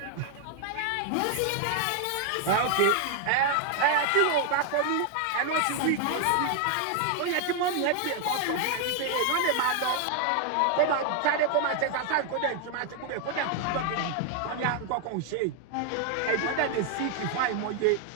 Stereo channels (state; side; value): different; both; correlation 0.00